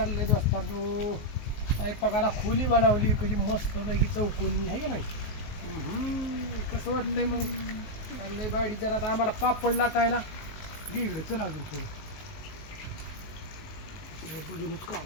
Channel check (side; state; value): right; late; 19 ms